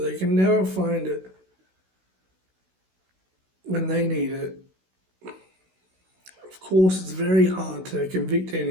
can never find it when they need it. Of course, it's very hard to convict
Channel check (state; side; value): late; left; 16 ms